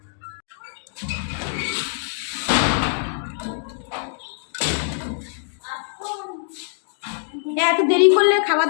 এত দেরি করলে খাবার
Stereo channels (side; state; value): right; silent; digital silence